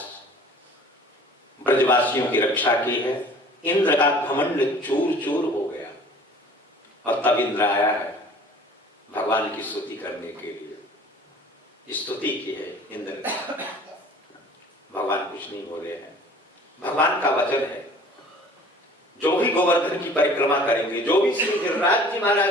ब्रजवासियों की रक्षा की है। इंद्र का घमंड चूर चूर हो गया और तब इंद्र आया है भगवान की स्तुति करने के लिए। स्तुति की है इंद्र ने। भगवान कुछ नहीं बोले हैं। भगवान का वचन है, जो भी गोवर्धन की परिक्रमा करेंगे, जो भी श्री गिरिराज जी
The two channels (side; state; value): both; normal; correlation 0.48